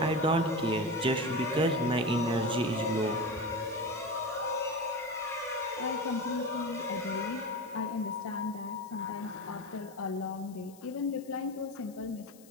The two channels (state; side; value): noise; left; hiss, 23 dB below the sound